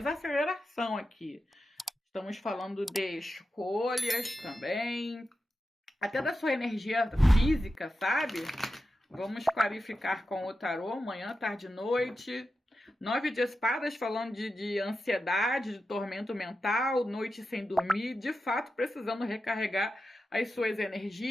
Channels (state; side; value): normal; both; correlation 0.91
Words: aqui. Estamos falando de escolhas também, até da sua energia física, sabe? Vamos clarificar com o tarô, manhã, tarde e noite. 9 de espadas falando de ansiedade, de tormento mental, noite sem dormir, de fato precisando recarregar as suas